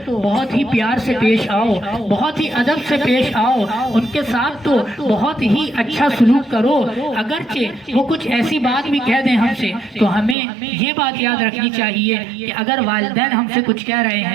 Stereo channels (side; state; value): left; drops out; at 10.4 s